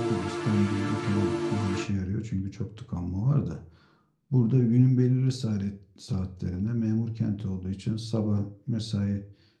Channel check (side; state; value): both; identical; correlation 1.00